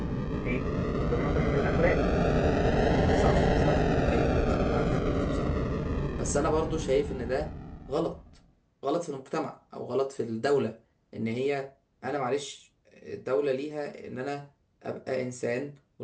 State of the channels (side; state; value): both; identical; correlation 1.00